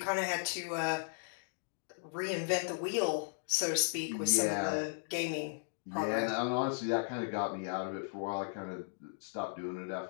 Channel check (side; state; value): right; silent; digital silence